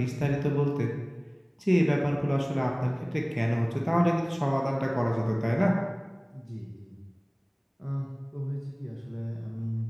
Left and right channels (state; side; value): identical; both; correlation 1.00